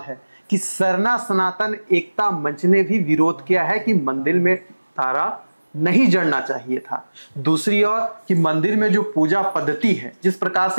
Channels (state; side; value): inverted; both; correlation -1.00